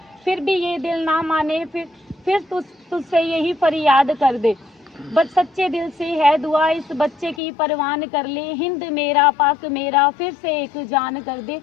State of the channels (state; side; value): drops out; right; at 7.4 s